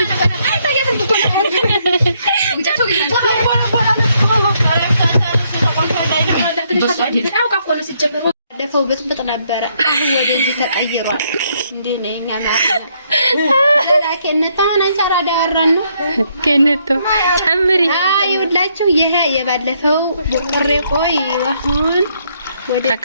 ባለፈው ብጥብጥ ነበረ አሁን ወደዚህ ተቀይሯል እንዴ ነኛ ማለት ለከነታ አንቻራ ዳራን ነው ከነቶ ጨምሪ አይውላችሁ ይሄ የባለፈው ቡቅሬ ቆይ አሁን ወደ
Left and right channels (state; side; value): inverted; both; correlation -0.72